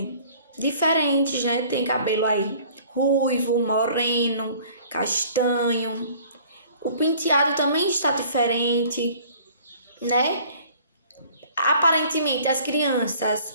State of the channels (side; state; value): both; inverted; correlation -0.52